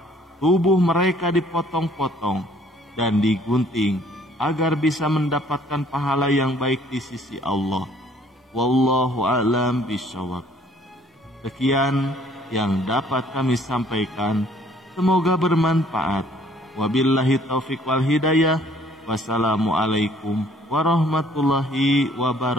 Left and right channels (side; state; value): both; normal; correlation 0.59